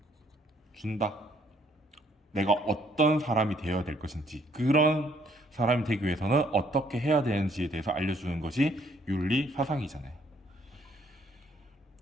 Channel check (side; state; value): both; normal; correlation 0.66